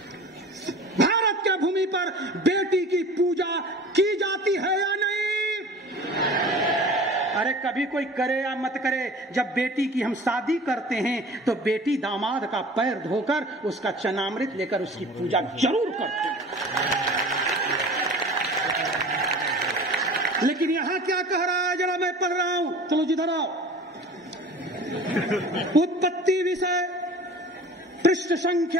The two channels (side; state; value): both; normal; correlation 0.41